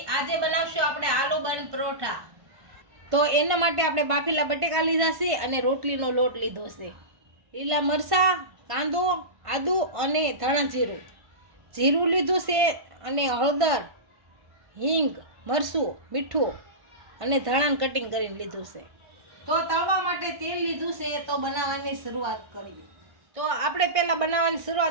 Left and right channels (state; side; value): late; left; 1.5 ms